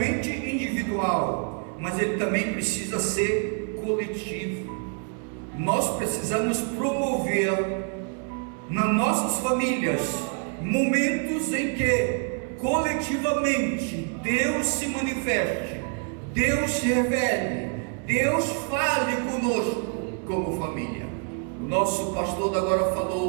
individual, mas ele também precisa ser coletivo. Nós precisamos promover nas nossas famílias momentos em que coletivamente Deus se manifeste, Deus se revele, Deus fale conosco como família. O nosso pastor agora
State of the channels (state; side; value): quieter; left; 39.6 dB